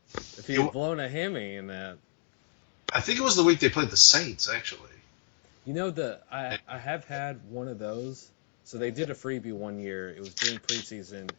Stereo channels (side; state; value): right; silent; digital silence